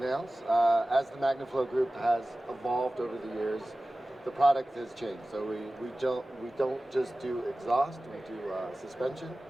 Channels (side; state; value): both; normal; correlation 0.97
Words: As the MagnaFlow Group has evolved over the years, the product has changed. So we don't just do exhaust, we do suspension.